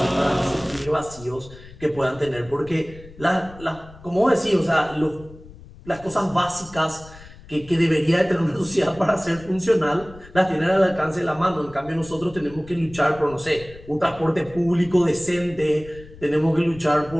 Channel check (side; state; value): left; noise; rumble, 19 dB below the sound